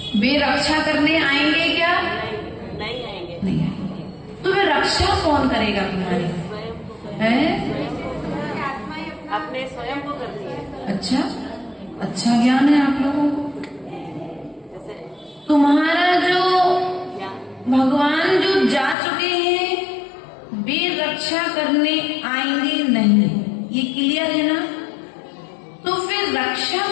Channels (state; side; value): drops out; right; at 18.9 s